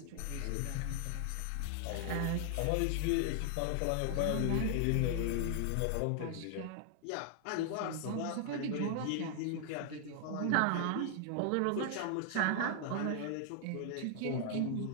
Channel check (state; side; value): different; both; correlation 0.00